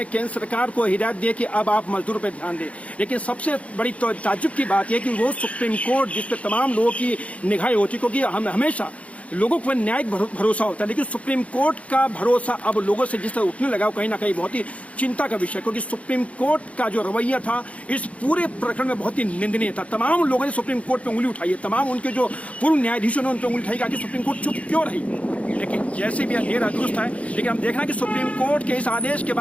केंद्र सरकार को हिदायत दी कि अब आप मजदूरों पर ध्यान दें, लेकिन सबसे बड़ी ताज्जुब की बात यह कि वो सुप्रीम कोर्ट जिस पर तमाम लोगों की निगाहें होती, क्योंकि हम हमेशा लोगों को न्यायिक भरोसा होता है, लेकिन सुप्रीम कोर्ट का भरोसा अब लोगों से जिस तरह उठने लगा, कहीं ना कहीं बहुत ही चिंता का विषय, क्योंकि सुप्रीम कोर्ट का जो रवैया था इस पूरे प्रकरण में बहुत ही निंदनीय था। तमाम लोगों ने सुप्रीम कोर्ट पे उंगली उठाई है, तमाम उनके जो पूर्व न्यायाधीशों ने उन पर उंगली उठाई कि सुप्रीम कोर्ट चुप क्यों रही। लेकिन जैसे भी देर दुरुस्त है, लेकिन हम देखना कि सुप्रीम कोर्ट के इस आदेश के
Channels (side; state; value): right; late; 0.065 ms